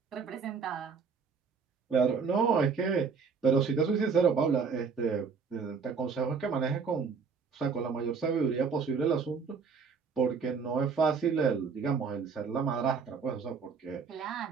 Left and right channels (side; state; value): left; quieter; 5.5 dB